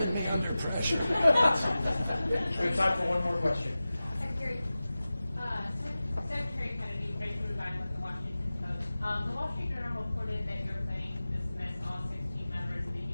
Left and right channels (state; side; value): inverted; both; correlation -0.96